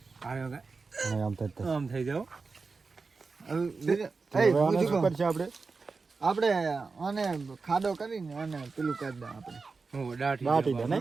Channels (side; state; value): left; quieter; 4.4 dB